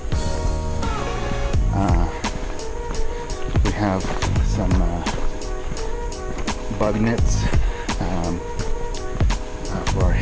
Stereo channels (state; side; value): identical; both; correlation 1.00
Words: We have some bug nets for our